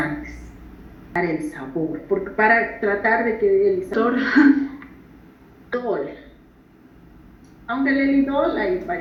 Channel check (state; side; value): identical; both; correlation 1.00